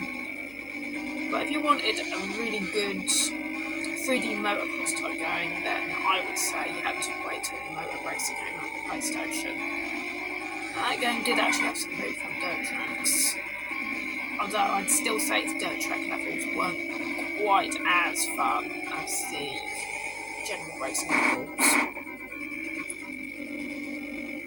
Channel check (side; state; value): right; noise; hum, 22 dB below the sound